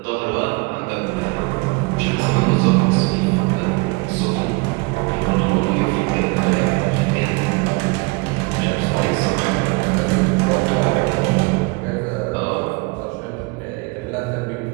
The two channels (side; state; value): left; quieter; 27.7 dB